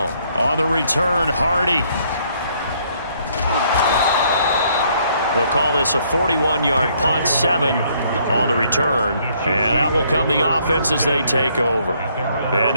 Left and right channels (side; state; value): both; inverted; correlation -0.67